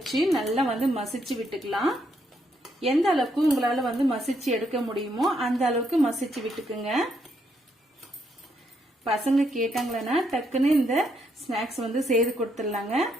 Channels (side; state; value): both; normal; correlation 0.75